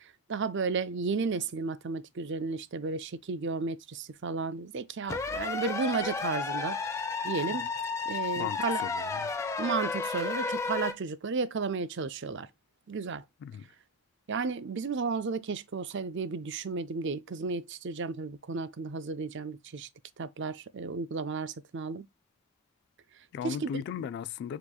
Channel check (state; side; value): normal; both; correlation 0.12